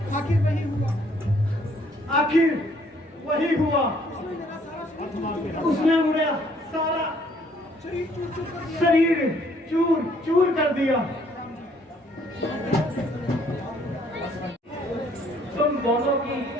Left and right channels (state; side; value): normal; both; correlation 0.64